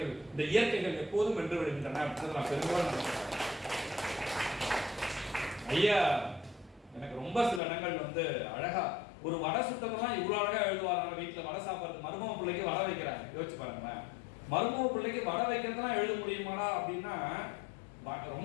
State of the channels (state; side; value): drops out; right; at 7.6 s